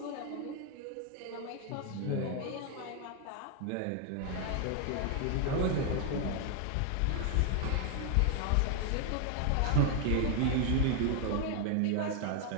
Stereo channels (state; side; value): different; both; correlation 0.00